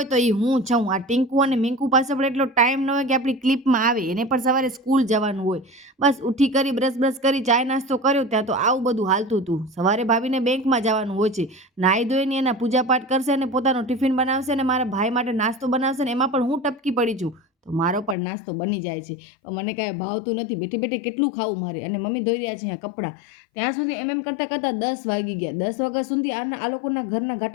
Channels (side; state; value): right; drops out; at 18.2 s